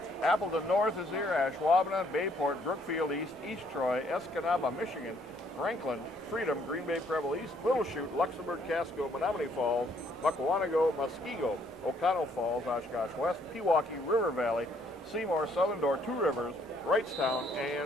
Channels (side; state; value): both; normal; correlation 0.67